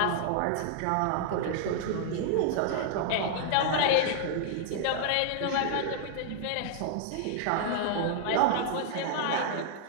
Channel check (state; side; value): different; both; correlation -0.01